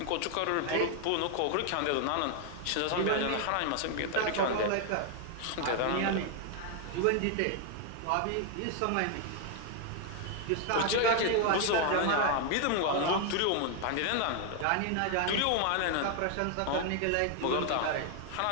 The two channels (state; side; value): different; both; correlation 0.00